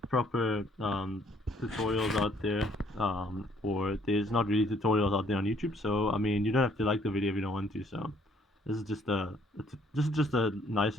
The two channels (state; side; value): normal; both; correlation 0.64